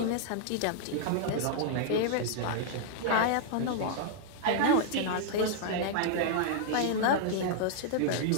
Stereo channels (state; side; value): different; both; correlation -0.01